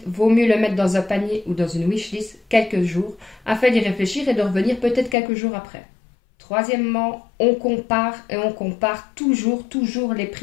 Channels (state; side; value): drops out; right; at 5.2 s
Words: vaut mieux le mettre dans un panier ou dans une wishlist quelques jours afin d'y réfléchir et de revenir peut-être quelques jours après. Troisièmement, on compare toujours les